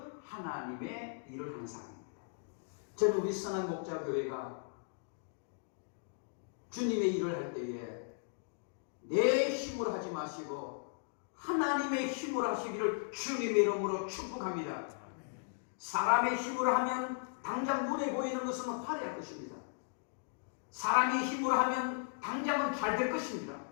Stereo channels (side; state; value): right; silent; digital silence